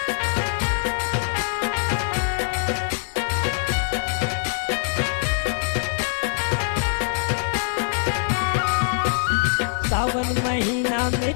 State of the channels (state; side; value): silent; right; digital silence